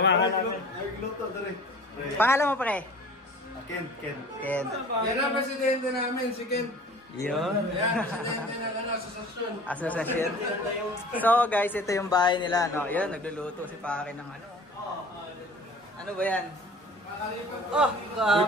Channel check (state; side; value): normal; both; correlation 0.45